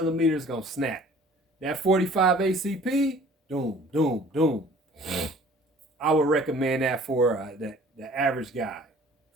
is going to snap. That 45 ACP, doom, doom, doom. I would recommend that for the average guy.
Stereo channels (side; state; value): both; normal; correlation 0.51